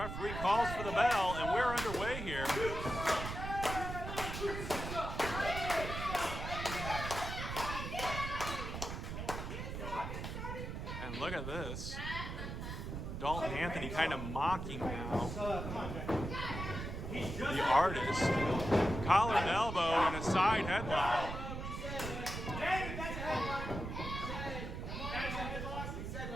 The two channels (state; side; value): noise; right; rumble, 6 dB below the sound